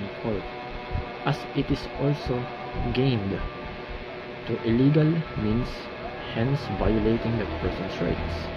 court, as it is also gained through illegal means, hence violating that person's rights.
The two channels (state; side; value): identical; both; correlation 1.00